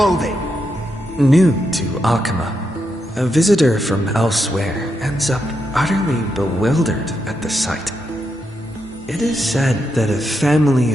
New to Akama, a visitor from elsewhere ends up utterly bewildered at the sight. It is said that a family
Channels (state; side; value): normal; both; correlation 0.83